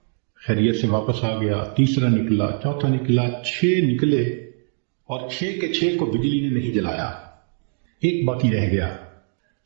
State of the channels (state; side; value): silent; left; 63 dB below the other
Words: خیریت سے واپس آ گیا، تیسرا نکلا، چوتھا نکلا، 6 نکلے اور 6 کے 6 کو بجلی نے نہیں جلایا، ایک باقی رہ گیا۔